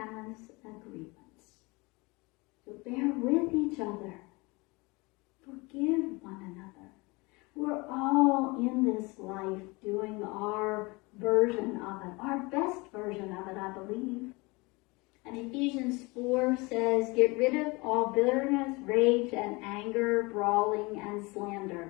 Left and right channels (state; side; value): quieter; right; 25.5 dB